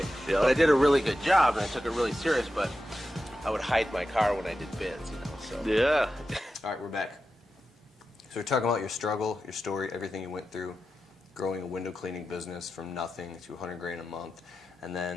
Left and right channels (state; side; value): normal; both; correlation 0.91